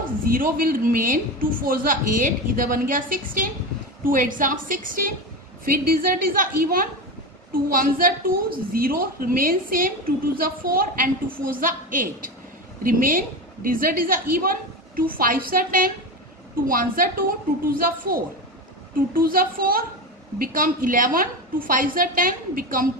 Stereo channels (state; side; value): normal; both; correlation 0.21